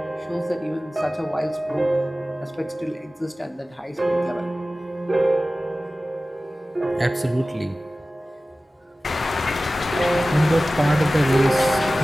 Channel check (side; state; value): both; normal; correlation 0.96